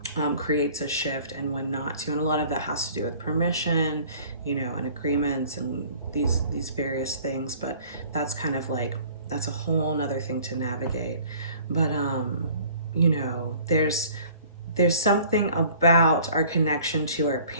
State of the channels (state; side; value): inverted; both; correlation -0.51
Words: creates a shift, and when not to. And a lot of that has to do with permission, you know, and agreements and these various things. But that's kind of like, that's a whole nother thing to navigate. But you know, there's something about our connection to our